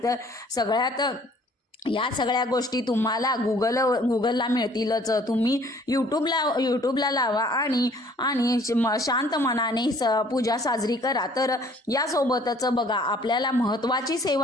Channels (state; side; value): normal; both; correlation 0.57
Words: या सगळ्या गोष्टी तुम्हाला गुगलला मिळतीलच. तुम्ही यूट्यूबला लावा आणि शांत मनाने पूजा साजरी करा. तर यासोबतच बघा, आपल्याला महत्त्वाची